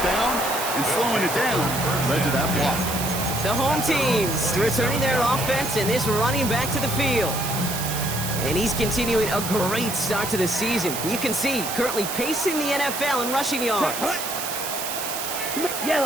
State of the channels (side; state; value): right; noise; hiss, 5 dB below the sound